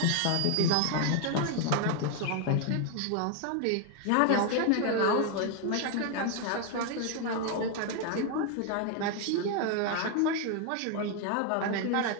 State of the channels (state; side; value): different; both; correlation 0.01